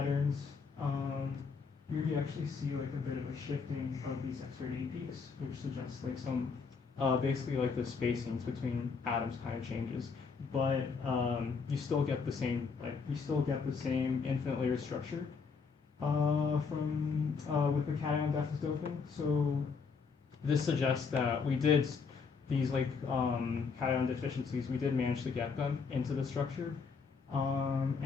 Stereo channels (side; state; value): right; quieter; 5.2 dB